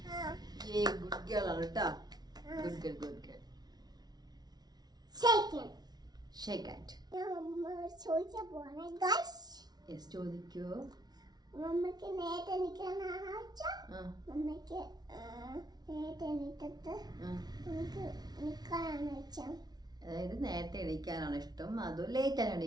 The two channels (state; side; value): late; left; 0.19 ms